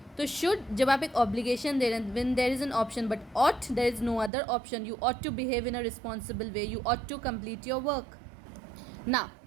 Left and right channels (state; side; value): drops out; left; at 4.3 s